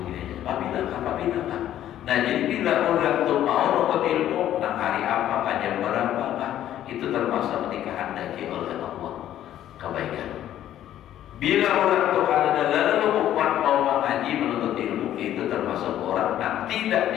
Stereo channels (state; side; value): quieter; right; 11.9 dB